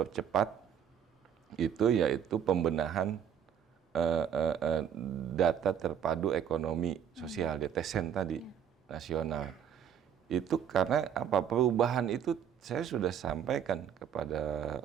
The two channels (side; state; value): left; quieter; 8.7 dB